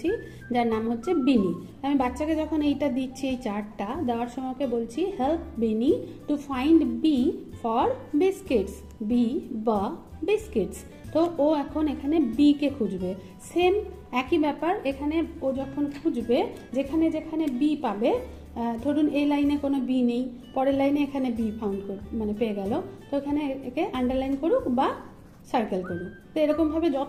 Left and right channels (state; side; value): identical; both; correlation 1.00